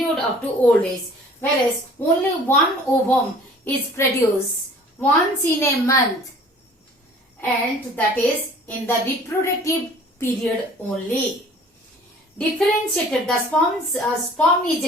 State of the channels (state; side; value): normal; both; correlation 0.50